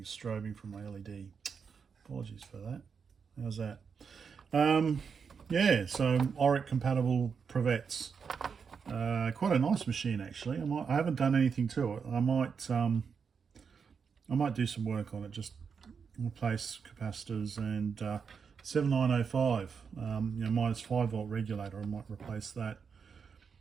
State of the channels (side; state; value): left; quieter; 6.1 dB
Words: strobing from my LED. Apologies for that. How's that? So Oric compatible Pravec. Quite a nice machine actually. I haven't done anything to it. I might do some work on it, just replace capacitors and 7905 minus 5 volt regulator. I might replace that